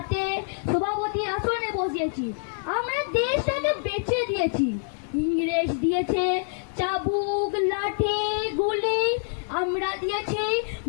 সভাপতি আসনে বসিয়েছি। আমরা দেশটাকে বেচে দিয়েছি। ইংরেজ দিয়েছে চাবুক, লাঠি, গুলি, আমরা দিয়েছি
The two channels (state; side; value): silent; right; digital silence